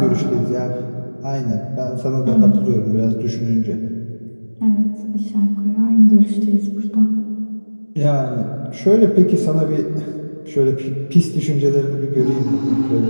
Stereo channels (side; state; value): both; inverted; correlation -1.00